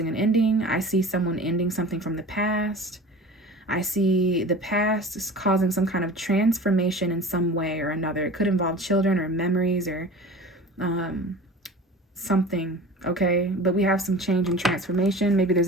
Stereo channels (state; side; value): normal; both; correlation 0.39